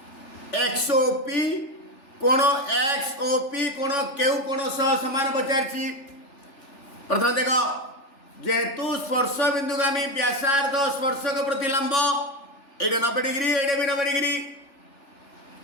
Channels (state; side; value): late; right; 3.4 ms